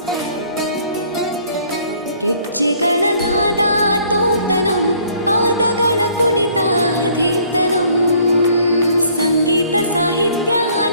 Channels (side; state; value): both; inverted; correlation -0.59